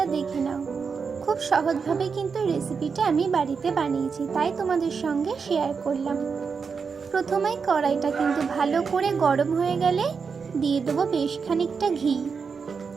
দেখে নাও। খুব সহজভাবে কিন্তু রেসিপিটা আমি বাড়িতে বানিয়েছি, তাই তোমাদের সঙ্গে শেয়ার করলাম। প্রথমেই কড়াইটা কিন্তু ভালো করে গরম হয়ে গেলে দিয়ে দেবো বেশ খানিকটা ঘি।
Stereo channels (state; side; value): quieter; left; 5.6 dB